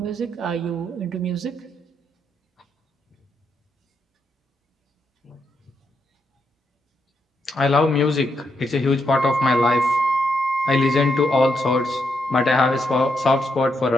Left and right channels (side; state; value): both; normal; correlation 0.80